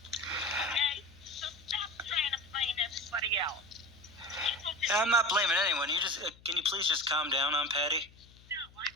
Okay? So stop trying to blame everybody else. I'm not blaming anyone. Can you please just calm down, Aunt Patty? No, I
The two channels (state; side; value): noise; left; hum, 24 dB below the sound